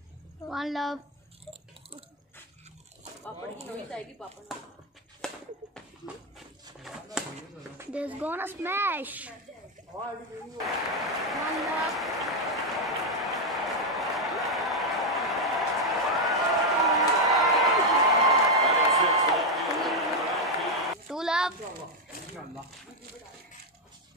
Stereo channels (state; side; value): normal; both; correlation 0.03